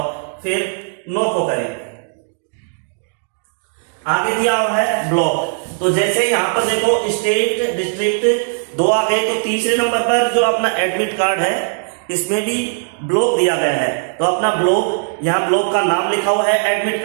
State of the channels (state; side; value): silent; left; digital silence